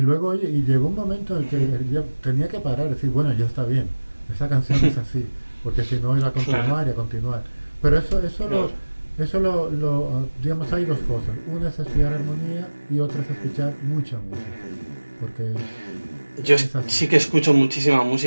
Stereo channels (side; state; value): both; inverted; correlation -1.00